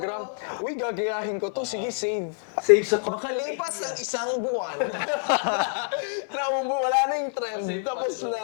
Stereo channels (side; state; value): right; silent; 59 dB below the other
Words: Uy, gagayahin ko to. Sige, save. Save sa Makalipas ang isang buwan. Wala na yung trend. Tapos